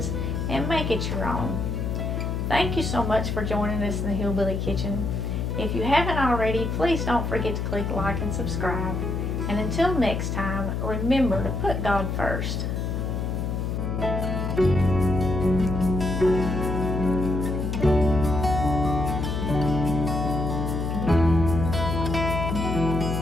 and make it your own. Thank you so much for joining us in the Hillbilly Kitchen. If you haven't already, please don't forget to click like and subscribe. And until next time, remember to put God first.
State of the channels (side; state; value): left; noise; hum, 1 dB below the sound